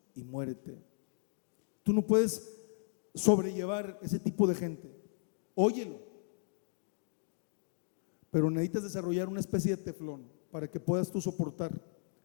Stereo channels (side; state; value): right; silent; digital silence